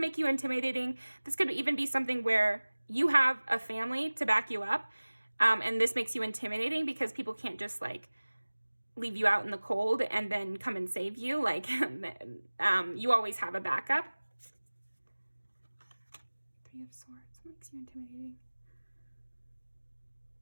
you intimidating. This could even be something where you have a family to back you up. And this makes you intimidating because people can't just like leave you out in the cold and then come and save you. Like you always have a backup. Three of Swords makes you intimidating.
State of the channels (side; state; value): both; inverted; correlation -1.00